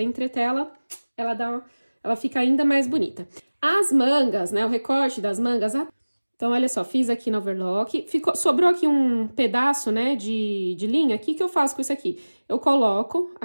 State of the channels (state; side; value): inverted; both; correlation -1.00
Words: a entretela, ela fica ainda mais bonita. As mangas, né, o recorte das mangas, então, olha só, fiz aqui no overlock, sobrou aqui um pedaço, né, de linha, o que eu faço com isso aqui? Eu coloco